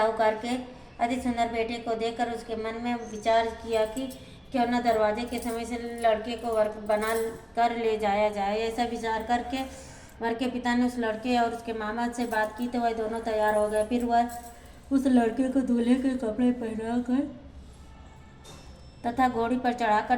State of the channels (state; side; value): identical; both; correlation 1.00